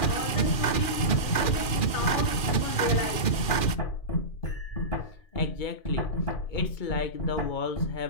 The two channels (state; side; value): late; right; 2.4 ms